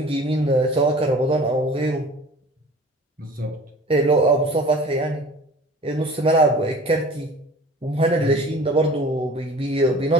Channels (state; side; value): normal; both; correlation 0.43